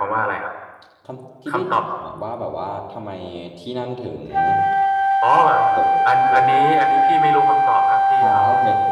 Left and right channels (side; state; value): both; identical; correlation 1.00